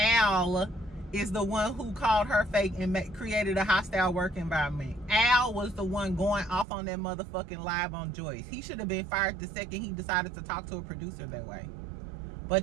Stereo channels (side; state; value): left; drops out; at 6.7 s